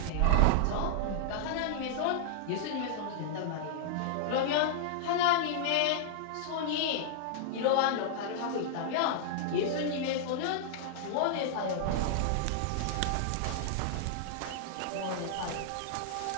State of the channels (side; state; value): both; different; correlation -0.01